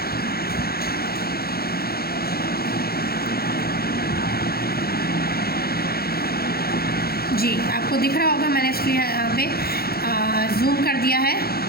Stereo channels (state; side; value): late; right; 0.45 ms